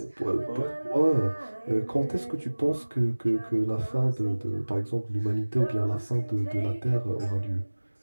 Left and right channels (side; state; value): both; inverted; correlation -1.00